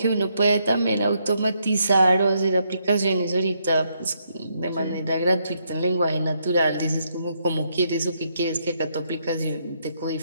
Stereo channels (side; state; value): both; inverted; correlation -0.76